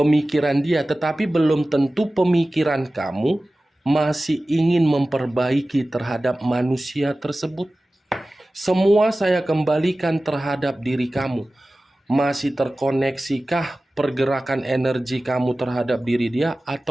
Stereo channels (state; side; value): normal; both; correlation 0.96